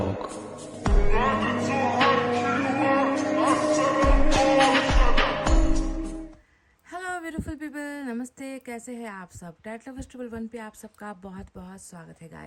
हेलो ब्यूटीफुल पीपल, नमस्ते। कैसे हैं आप सब? टैट लवर्स ट्रिपल वन पे आप सबका बहुत बहुत स्वागत है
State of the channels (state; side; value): identical; both; correlation 1.00